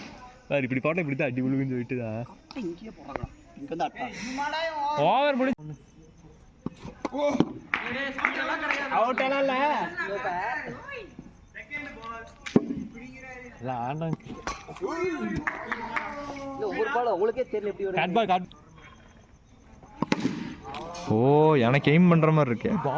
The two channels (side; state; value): both; identical; correlation 1.00